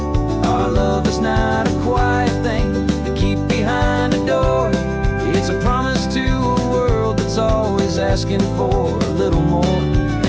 asking for a little more.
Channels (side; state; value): both; identical; correlation 1.00